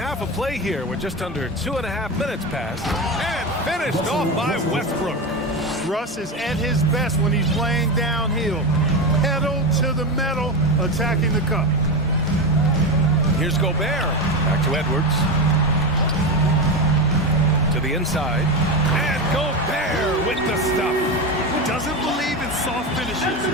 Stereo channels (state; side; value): normal; both; correlation 0.18